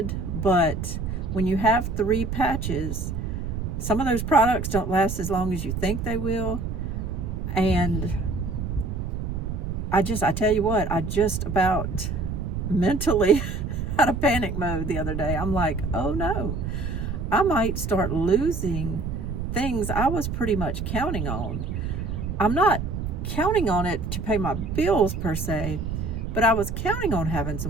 but when you have 3 patches, some of those products don't last as long as you think they will. And I tell you what, I just about mentally out of panic mode the other day. I'm like, oh no, I might start losing things I was pretty much counting on. I'm not counting on it to pay my bills per se, but I was counting on having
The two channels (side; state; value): right; noise; rumble, 4 dB below the sound